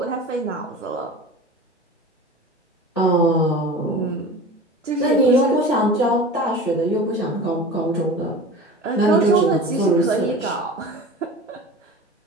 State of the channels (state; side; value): normal; both; correlation 0.36